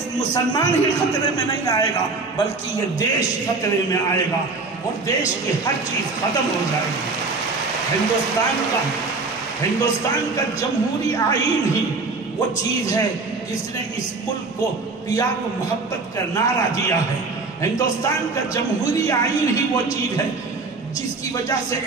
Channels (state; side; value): quieter; left; 3.9 dB